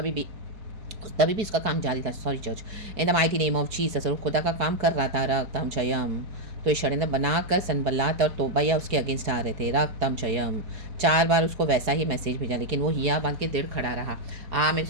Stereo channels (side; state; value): left; late; 4.7 ms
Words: भी इसका काम जारी था। Sorry church, in the mighty name of Jesus. और खुदा का काम कर रहा था, रक्तम जयम। तो ये षड्यंत्र बनाकर सनबलात और तोबैया उसके अगेंस्ट आ रहे थे, रक्तम जयम। 4 बार उसको वैसा ही मैसेज भेजा, लेकिन वो हिया बांध के देर खड़ा रहा। मैं